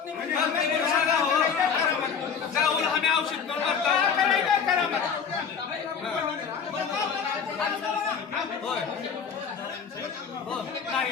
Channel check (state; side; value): quieter; right; 6.6 dB